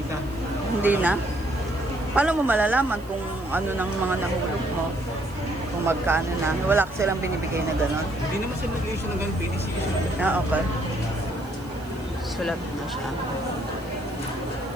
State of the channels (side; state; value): right; noise; hiss, 26 dB below the sound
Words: na. Hindi na? Paano mo malalaman kung ano ng mga nahulog mo? Kung magkano na? Wala ka silang binibigay na gano'n? Hindi naman sila nag-issue ng ganun. PDC issue. Ah, okay. Sulat na siya.